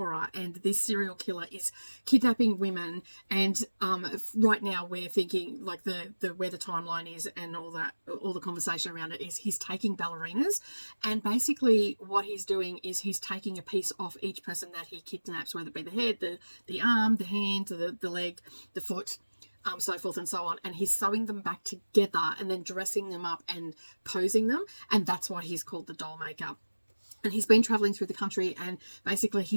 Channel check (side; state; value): both; inverted; correlation -1.00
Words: and this serial killer is kidnapping women, and right now we're thinking, like, the where the timeline is and all that, all the conversation around it is he's taking ballerinas, and basically what he's doing is he's taking a piece off each person that he kidnaps, whether it be the head, the arm, the hand, the leg, the foot, so forth and so on, and he's sewing them back together and then dressing them up and posing them, and that's why he's called the Doll Maker. And he's been traveling through the country, and basically